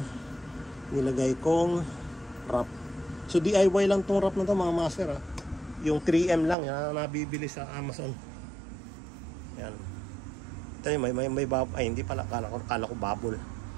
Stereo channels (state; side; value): drops out; left; at 6.6 s